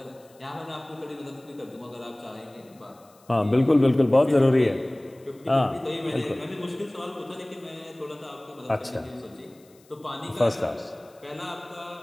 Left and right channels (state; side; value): noise; left; hiss, 30 dB below the sound